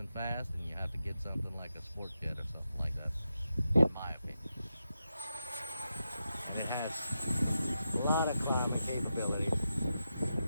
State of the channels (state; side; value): inverted; both; correlation -0.88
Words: fast, then you have to get something like a sport jet or something like that, in my opinion. And it has a lot of climbing capabilities.